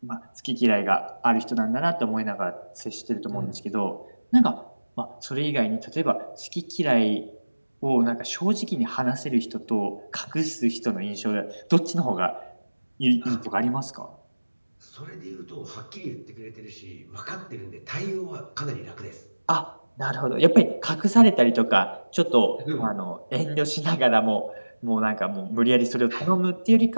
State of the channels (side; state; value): both; inverted; correlation -1.00